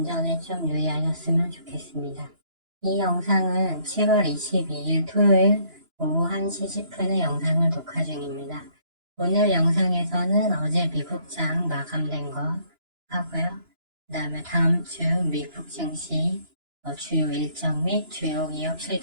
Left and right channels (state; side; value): late; left; 2.9 ms